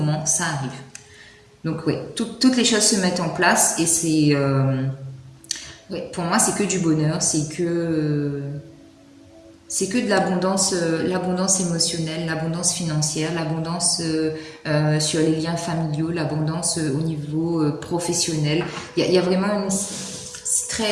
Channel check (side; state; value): both; identical; correlation 1.00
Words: ça arrive. Donc oui, toutes les choses se mettent en place et c'est... ouais, pour moi, c'est que du bonheur, c'est que de l'abondance émotionnelle, l'abondance financière, l'abondance sur les liens familiaux, l'abondance au niveau professionnel. Il y a vraiment une... C'est